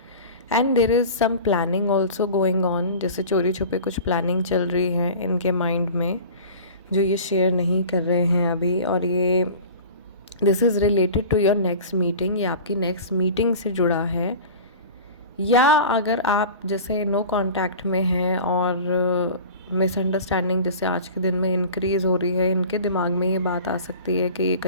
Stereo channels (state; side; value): inverted; both; correlation -0.38